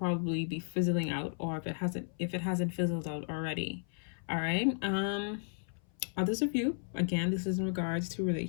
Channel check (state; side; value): silent; right; 55 dB below the other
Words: be fizzling out, or if it hasn't fizzled out already. All right. Others of you, again, this is in regards to